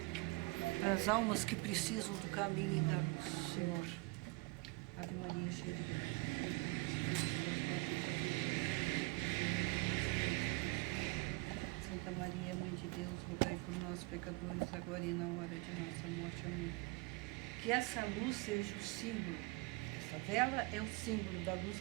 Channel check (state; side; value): quieter; left; 25.0 dB